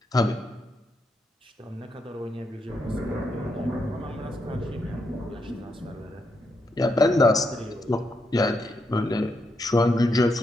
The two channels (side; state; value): both; normal; correlation 0.81